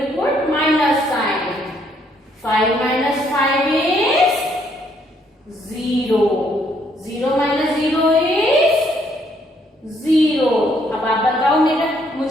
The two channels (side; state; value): both; normal; correlation 0.69